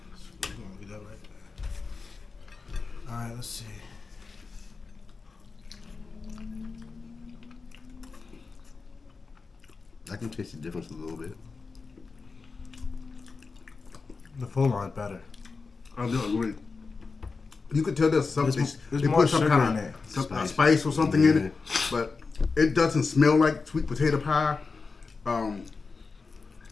get that right. All right, let's see. I can taste the difference a little bit. The full line's better. I do agree. You could tell there's something. There's They more put some sugar kind in of it. spice or something in it, but it doesn't smell like sweet potato pie.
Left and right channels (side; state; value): right; quieter; 4.4 dB